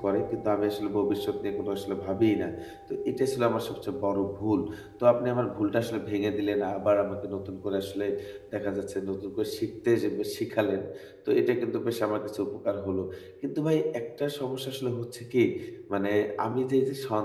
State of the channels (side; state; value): both; identical; correlation 1.00